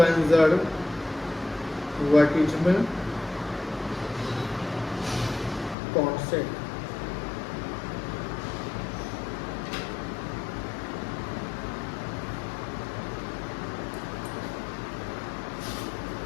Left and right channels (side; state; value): right; drops out; at 5.8 s